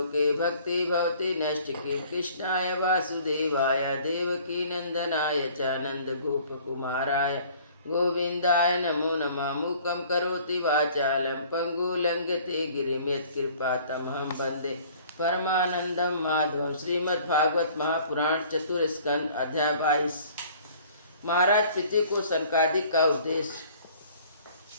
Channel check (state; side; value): inverted; both; correlation -0.53